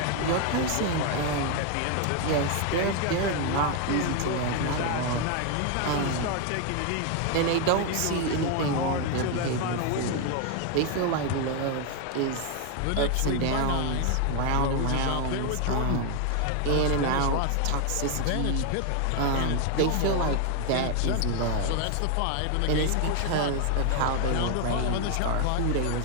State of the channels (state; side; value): different; both; correlation 0.01